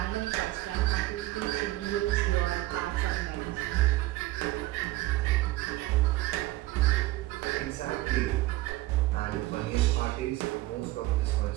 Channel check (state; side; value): quieter; left; 17.8 dB